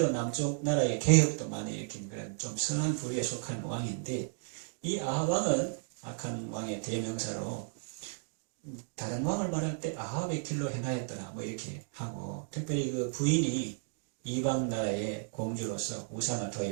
남쪽 나라의 개혁도 많이 일으킨 그런 좀 선한 부류에 속한 왕인데 이 아합 왕은 악한 왕의 대명사로 다른 왕을 말할 때 아합의 길로 행하였더라 뭐 이렇게 하고 특별히 그 부인이 이방 나라의 공주로서 우상을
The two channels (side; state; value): left; silent; digital silence